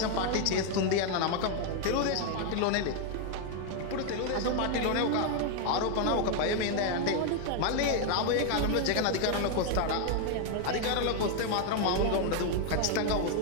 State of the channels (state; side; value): different; both; correlation 0.00